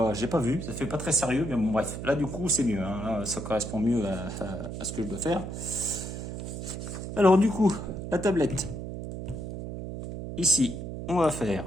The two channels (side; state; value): right; noise; hum, 7 dB below the sound